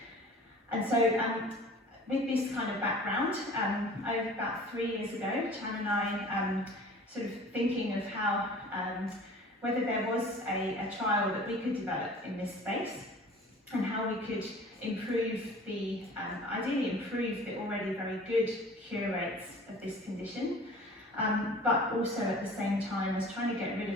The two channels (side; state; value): both; normal; correlation 0.45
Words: And so with this kind of background, over about 3 years ago, Chan and I sort of thinking of how, whether there was a trial that we could develop in this space, and how we could improve ideally improve the already very good cure rates of this condition, but also at the same time as trying to get rid